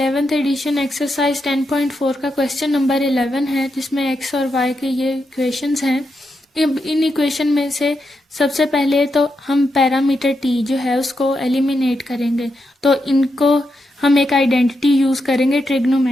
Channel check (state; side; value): normal; both; correlation 0.85